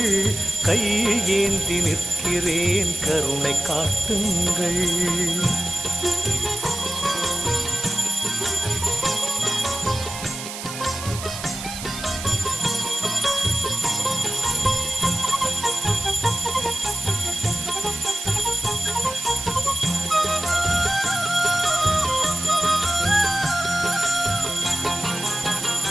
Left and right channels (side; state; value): right; noise; hiss, 9 dB below the sound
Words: கையேந்தி நிற்கிறேன், கருணை காட்டுங்கள்.